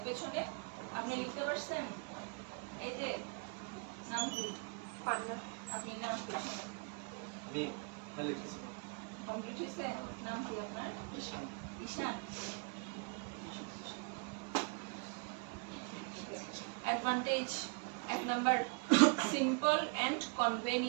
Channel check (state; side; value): quieter; left; 36.3 dB